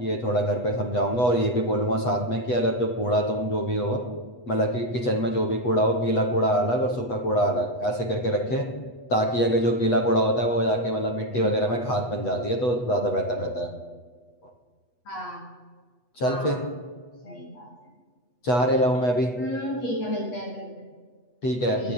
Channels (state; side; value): late; right; 8.2 ms